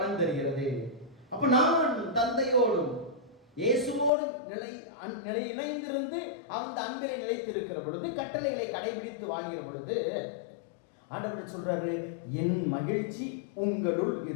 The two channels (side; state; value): right; drops out; at 4.1 s